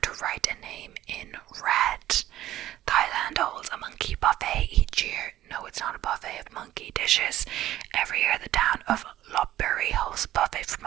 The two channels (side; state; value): left; quieter; 13.8 dB